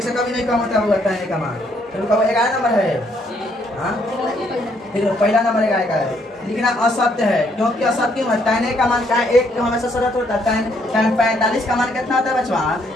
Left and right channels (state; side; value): normal; both; correlation 0.70